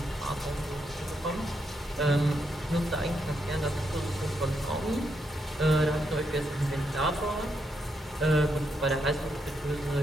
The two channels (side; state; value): both; normal; correlation 0.80